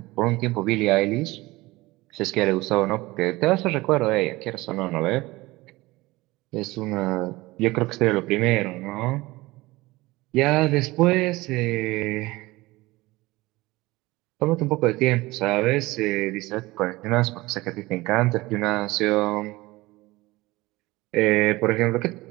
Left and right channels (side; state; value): left; quieter; 20.4 dB